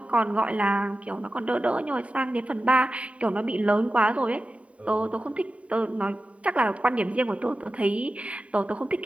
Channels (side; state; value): left; late; 0.065 ms